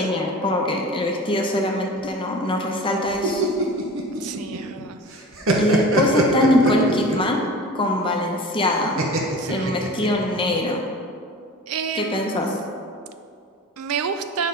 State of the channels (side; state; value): both; normal; correlation 0.38